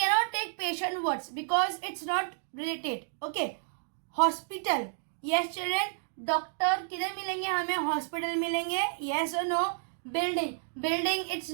take patient words because it's not related. Okay. Hospital. Yes children, doctor किधर मिलेंगे हमें? हॉस्पिटल मिलेंगे. yes or no? building it's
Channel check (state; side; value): silent; left; digital silence